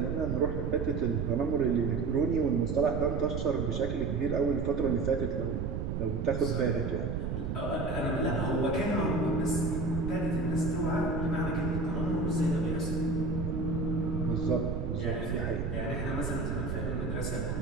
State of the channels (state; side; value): noise; right; rumble, 2 dB below the sound